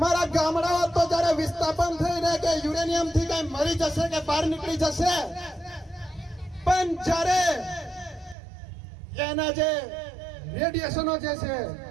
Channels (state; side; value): drops out; left; at 8.3 s